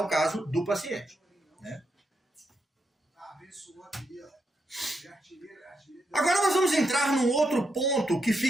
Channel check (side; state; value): both; normal; correlation 0.82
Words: caso do paciente. Né? Agora nós vamos entrar num outro ponto que